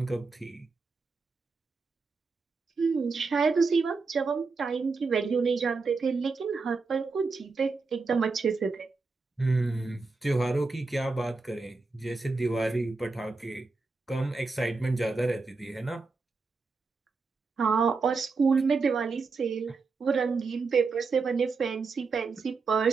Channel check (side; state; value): left; quieter; 4.3 dB